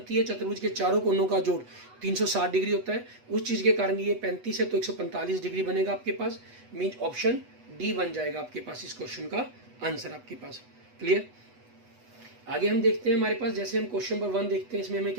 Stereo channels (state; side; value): late; left; 8.1 ms